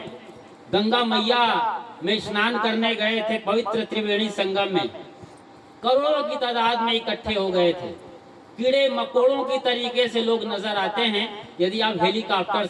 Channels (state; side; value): identical; both; correlation 1.00